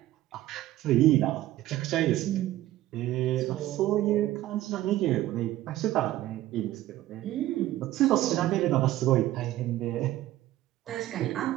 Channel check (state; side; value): quieter; left; 15.0 dB